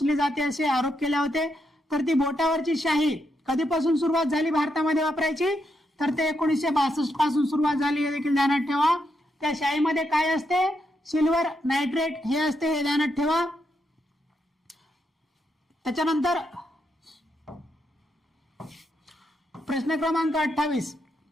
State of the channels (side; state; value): both; normal; correlation 0.81